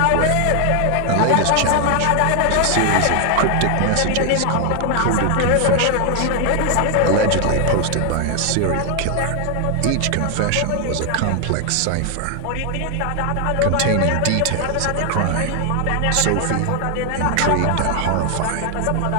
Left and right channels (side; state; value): both; different; correlation 0.00